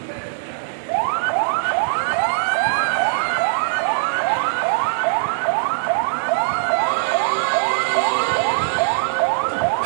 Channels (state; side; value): silent; left; digital silence